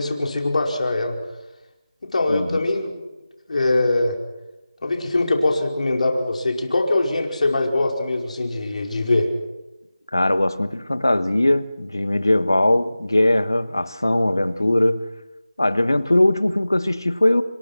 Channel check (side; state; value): both; inverted; correlation -0.96